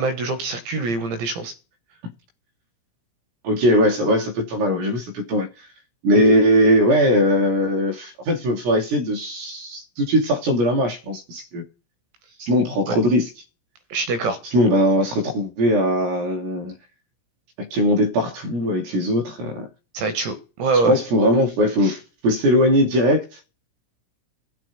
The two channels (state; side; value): late; left; 17 ms